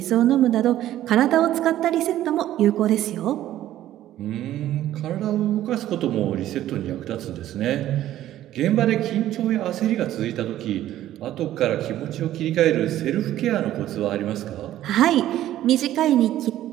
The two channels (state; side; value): quieter; left; 13.1 dB